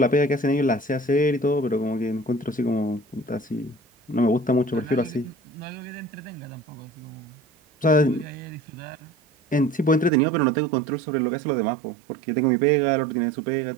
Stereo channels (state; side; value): drops out; left; at 10.1 s